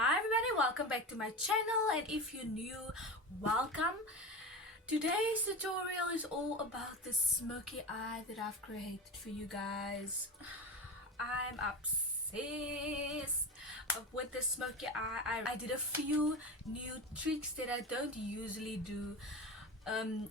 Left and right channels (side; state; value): both; normal; correlation 0.25